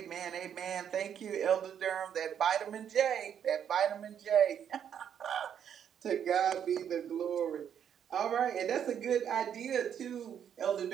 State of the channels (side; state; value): left; quieter; 8.8 dB